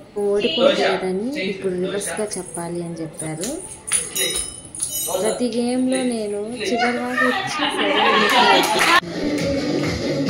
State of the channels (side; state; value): both; identical; correlation 1.00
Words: ఓడిపోతాడని ఇప్పుడు రివర్స్గా చెప్పాలి అని చెప్పారు. ప్రతి గేమ్లో నేను చివరి వరకు వచ్చి